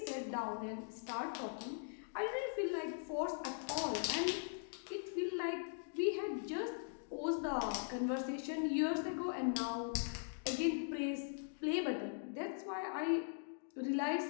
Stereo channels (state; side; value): silent; right; digital silence